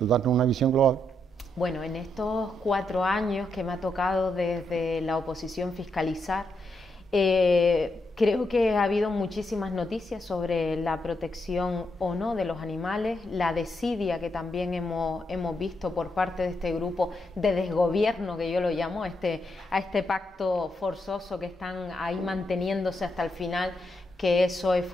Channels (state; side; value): normal; both; correlation 0.81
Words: una visión global? Bueno, en estos 4 años que me ha tocado desde la oposición fiscalizar, creo que ha habido muchísimas noticias sobre la protección o no de los animales, la desidia que también hemos visto por parte de este grupo de desgobierno, que yo lo llamo, a este pacto forzoso que están ahí manteniéndose hasta el final, que es SOE